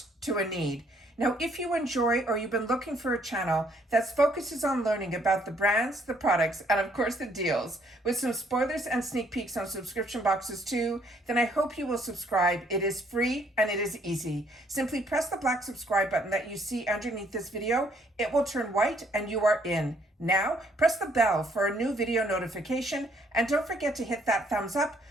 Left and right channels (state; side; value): normal; both; correlation 0.66